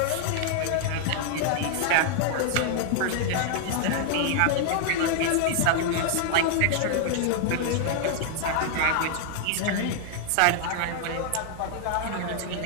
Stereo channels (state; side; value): different; both; correlation 0.00